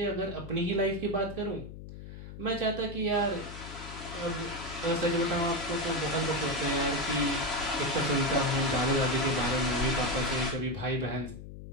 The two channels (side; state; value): left; noise; hum, 12 dB below the sound